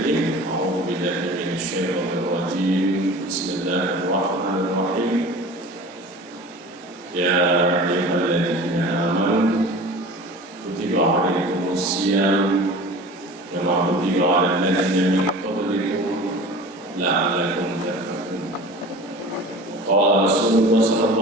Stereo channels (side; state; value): both; normal; correlation 0.39